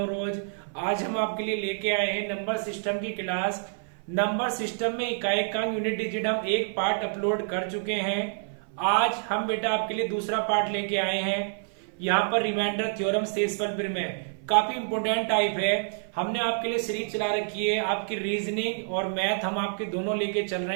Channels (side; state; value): left; silent; 55 dB below the other